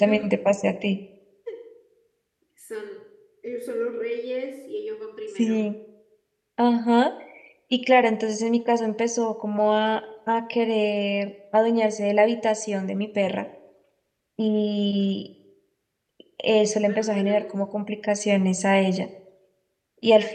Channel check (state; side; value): identical; both; correlation 1.00